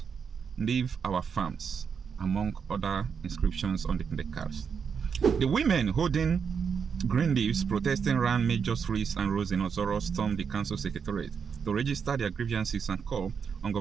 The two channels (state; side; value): quieter; left; 6.5 dB